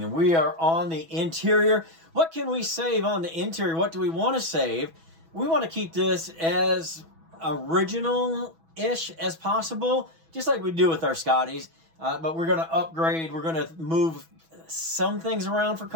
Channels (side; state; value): left; late; 6.1 ms